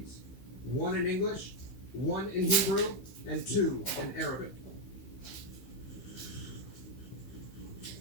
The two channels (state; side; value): late; right; 16 ms